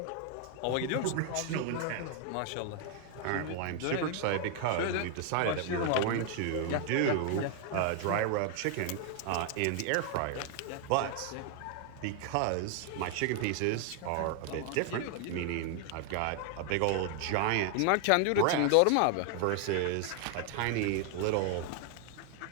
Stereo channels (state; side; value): different; both; correlation 0.00